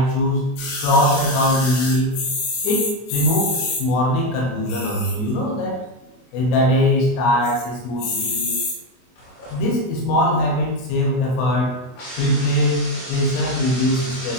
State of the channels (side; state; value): right; late; 24 ms